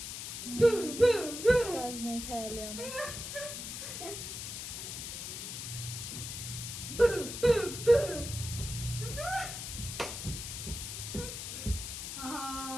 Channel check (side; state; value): left; noise; hiss, 7 dB below the sound